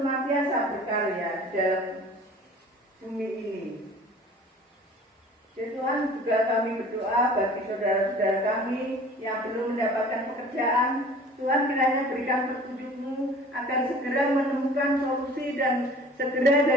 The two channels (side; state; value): both; normal; correlation 0.46